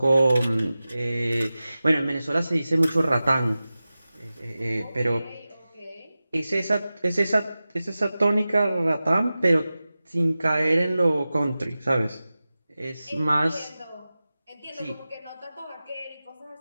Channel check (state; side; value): inverted; both; correlation -0.95